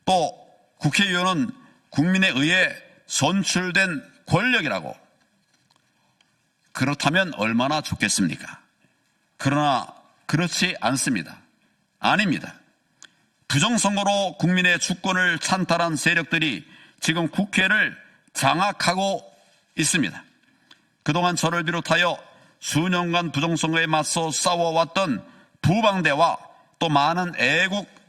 또 국회의원은 국민에 의해 선출된 권력이라고. 그렇다면 얼마나 좋겠습니까? 그러나 그렇지 않습니다. 아닙니다. 부정선거로 국민의 주권을 찬탈한 세력들이 지금 국회를 장악하고 있습니다. 그동안 저를 비롯하여 수년간 부정선거에 맞서 싸워왔던 부방대와 또 많은 애국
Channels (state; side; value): identical; both; correlation 1.00